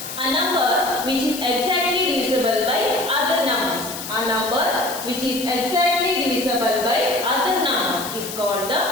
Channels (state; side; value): noise; left; hiss, 9 dB below the sound